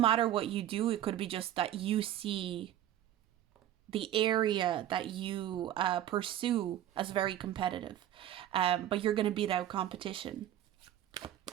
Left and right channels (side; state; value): left; quieter; 12.1 dB